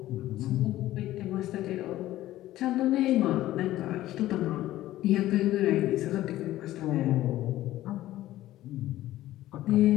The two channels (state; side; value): quieter; right; 14.9 dB